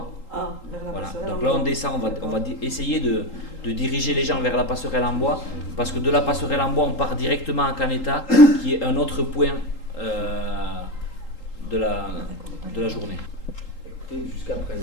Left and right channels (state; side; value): late; right; 3.8 ms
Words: Voilà. Donc là, on descend, on va essayer de diriger les gens vers la passerelle en bois, parce que de la passerelle en bois, on part directement à Caneta, qui est un autre point de la journée. Jusqu'à